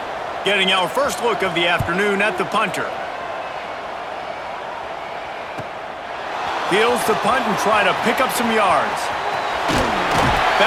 Getting our first look of the afternoon at the punter. Fields to punt and try to pick up some yards.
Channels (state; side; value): identical; both; correlation 1.00